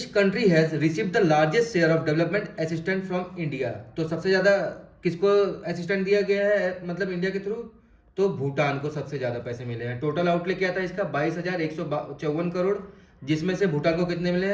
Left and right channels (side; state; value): both; identical; correlation 1.00